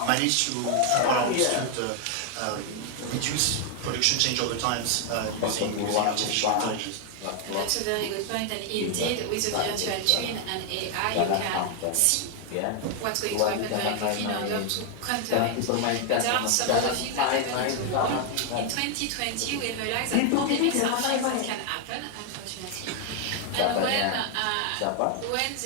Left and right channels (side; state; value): both; different; correlation 0.01